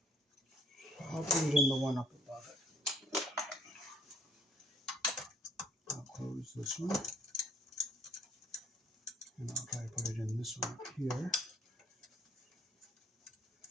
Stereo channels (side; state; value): both; normal; correlation 0.62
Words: I'll put it in the one up above it. I'll close this one. And I'll try to put it in this one up here.